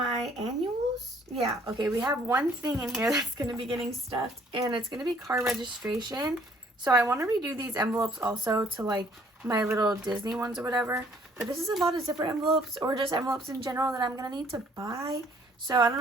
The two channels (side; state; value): both; normal; correlation 0.60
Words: annuals. Yeah, okay, we have one thing in here that's going to be getting stuffed, and it's going to be car registration. So I want to redo these envelopes also to like my little Disney ones or whatever. But this is a lot of zipper envelopes, or just envelopes in general, that I'm going to need to buy. So I don't